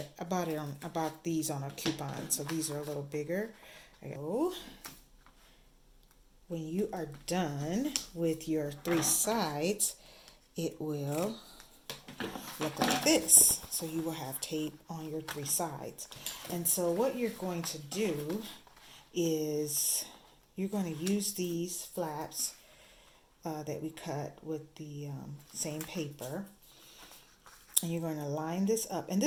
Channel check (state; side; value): identical; both; correlation 1.00